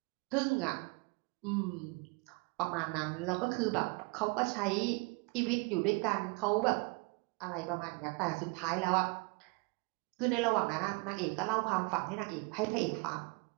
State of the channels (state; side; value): quieter; left; 29.2 dB